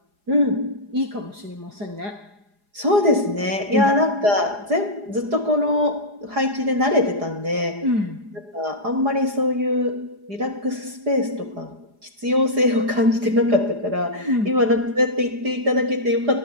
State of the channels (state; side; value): late; left; 4.9 ms